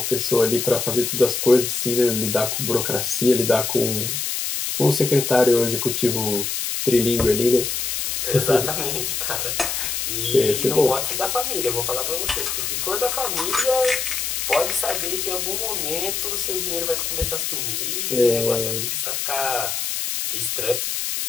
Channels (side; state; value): left; noise; hiss, 2 dB below the sound